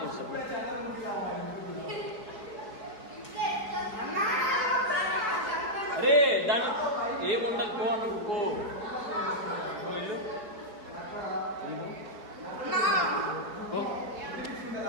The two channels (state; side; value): late; left; 4.6 ms